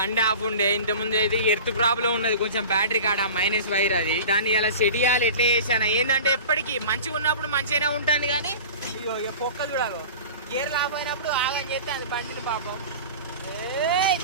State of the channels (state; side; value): inverted; both; correlation -0.37